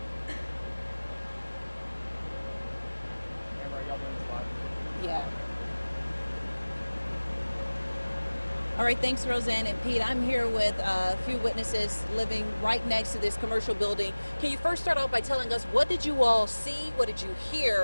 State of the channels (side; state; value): both; inverted; correlation -1.00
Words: Amber, are y'all doing this live? Yeah. All right, thanks, Roseanne and Pete. I'm here with a few witnesses living right next to this commercial building. Can you first start off by telling us, what did you all see? What did you